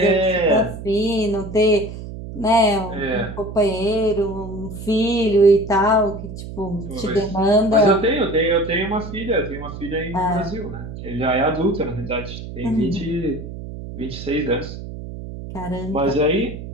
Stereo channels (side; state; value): right; noise; hum, 10 dB below the sound